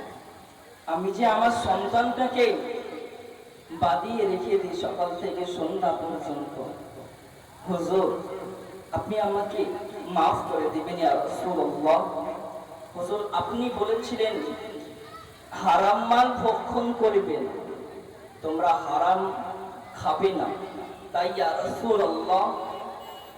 আমি যে আমার সন্তানটাকে বাঁধিয়ে রেখে দিই সকাল থেকে সন্ধ্যা পর্যন্ত, হুজুর আপনি আমাকে maaf করে দিবেন। ইয়া রাসূলুল্লাহ, হুজুর আপনি বলেছিলেন হারাম মাল ভক্ষণ করবেন, তোমরা হারাম খাবে না, তাই ইয়া রাসূলুল্লাহ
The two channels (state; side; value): identical; both; correlation 1.00